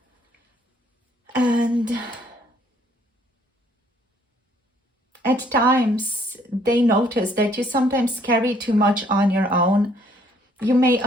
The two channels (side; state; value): both; normal; correlation 0.64